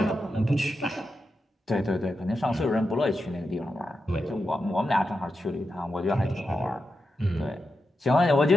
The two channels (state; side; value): normal; both; correlation 0.88